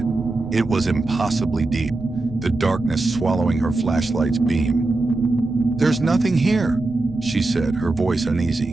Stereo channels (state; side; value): quieter; left; 3.1 dB